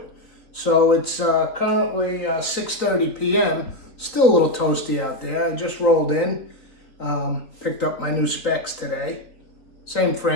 So it's currently 6:30 p.m. Still a little toasty out there. I just rolled in, picked up my new specs today. Same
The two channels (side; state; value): right; late; 3.9 ms